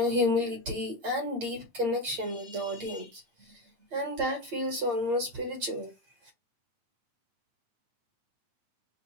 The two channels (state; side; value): late; left; 8.6 ms